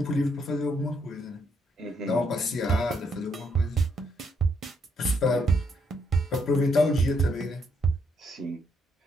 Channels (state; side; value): normal; both; correlation 0.74